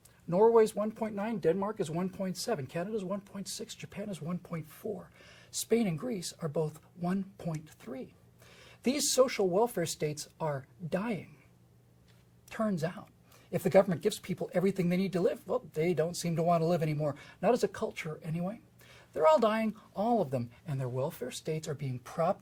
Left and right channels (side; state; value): both; identical; correlation 1.00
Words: Norway's 1.9, Denmark is 1.7, Canada's 1.6, Japan is 1.4. Spain and Greece are both 1.3. These social welfare states are dying. Turns out, if the government gives people everything they need to live, well, they don't seem to want to live anymore. Not as a culture, anyway. They're all dying, all of them, and their welfare states are being